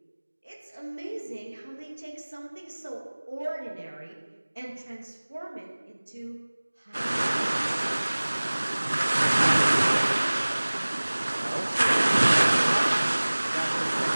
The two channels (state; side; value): inverted; both; correlation -1.00